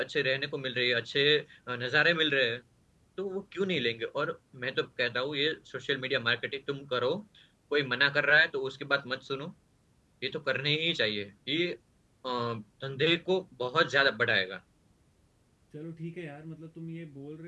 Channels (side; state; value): both; identical; correlation 1.00